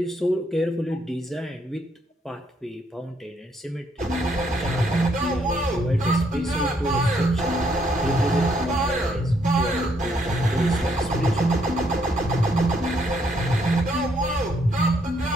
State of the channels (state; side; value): normal; both; correlation 0.72